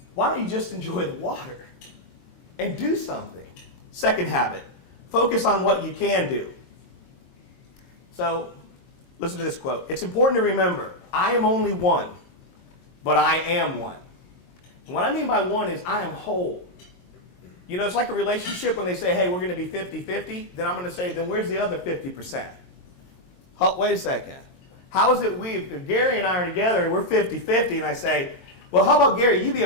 Why don't you just enjoy the water and do something? Second habit, focus on what you can do. So, listen to this quote. It's important to remember, I am only one, but I am one. And what I mean by one is I am whole. It's like a relationship when they say, hey, we're going to be 50-50. Then I'm going to say, then where's the other 50%? Wait a second. How is it if Gary and I are together and we're 50-50 and I say, well, how about Gary, you be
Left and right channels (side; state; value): right; late; 22 ms